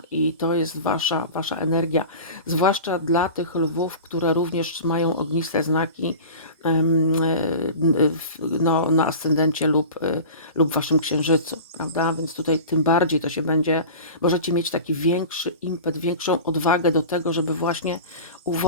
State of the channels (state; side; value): inverted; both; correlation -0.35